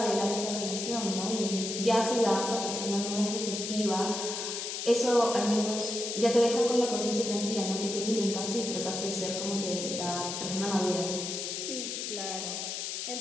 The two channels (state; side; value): noise; left; hiss, 4 dB below the sound